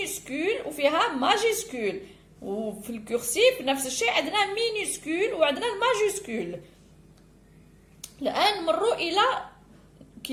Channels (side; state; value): both; identical; correlation 1.00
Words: وفيها ماجيسكول، وفي الكورسيف نفس الشيء عندنا مينيسكول وعندنا الماجيسكول. الآن نمروا إلى